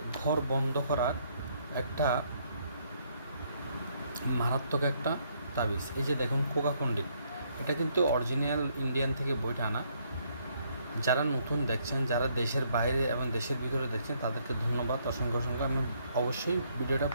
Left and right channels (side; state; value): both; inverted; correlation -0.70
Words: ঘর বন্ধ করার একটা মারাত্মক একটা তাবিজ। এই যে দেখুন কোকা পণ্ডিত, এটা কিন্তু অরিজিনাল ইন্ডিয়ান থেকে বইটা আনা। যারা নতুন দেখছেন, যারা দেশের বাইরে এবং দেশের ভিতরে দেখছেন, তাদেরকে ধন্যবাদ, অসংখ্য অসংখ্য। আমি অবশ্যই ভিডিওটা